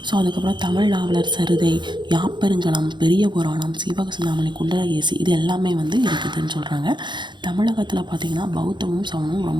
ஸோ அதுக்கப்புறம் தமிழ் நாவலர் சரிதை, யாப்பெருங்கலம், பெரிய புராணம், சிவகசிந்தாமணி, குண்டலகேசி இது எல்லாமே வந்து இருக்குதுன்னு சொல்கிறாங்க. தமிழகத்தில் பார்த்திங்கன்னா பௌத்தமும் சமணமும்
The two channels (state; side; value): late; left; 0.22 ms